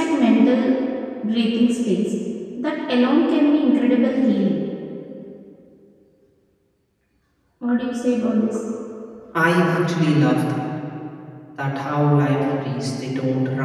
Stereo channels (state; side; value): identical; both; correlation 1.00